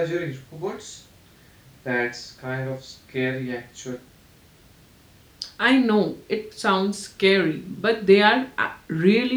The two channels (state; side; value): identical; both; correlation 1.00